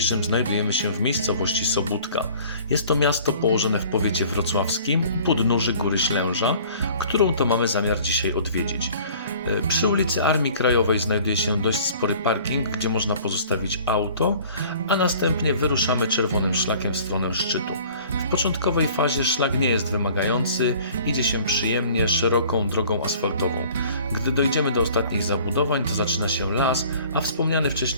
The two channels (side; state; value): both; inverted; correlation -0.50